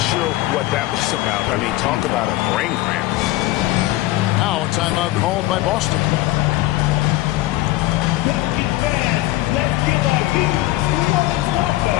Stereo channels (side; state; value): right; quieter; 17.5 dB